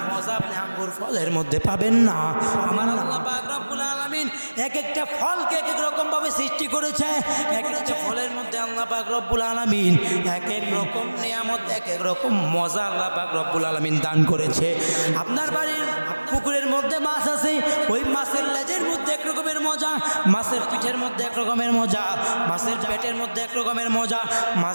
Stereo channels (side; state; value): both; inverted; correlation -1.00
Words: মজা আপনি আঙ্গুর ফলের মধ্যে পাবেন না। আমার আল্লাহ পাক রব্বুল আলামিন এক একটা ফলকে এক এক রকম ভাবে সৃষ্টি করেছে। এক একটা ফলের মধ্যে আল্লাহ পাক রব্বুল আলামিন এক এক রকম নিয়ামত, এক এক রকম মজা আল্লাহ পাক রব্বুল আলামিন দান করেছে। আপনার বাড়ির পুকুরের মধ্যে মাছ আছে, ওই মাছের লেজের মধ্যে এক রকমের মজা, মাছের পিঠের মধ্যে এক রকমের মজা, মাছের পেটের মধ্যে এক রকমের মজা,